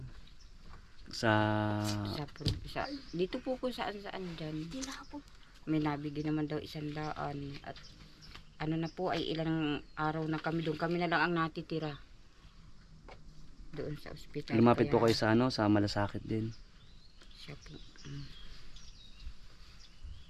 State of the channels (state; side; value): identical; both; correlation 1.00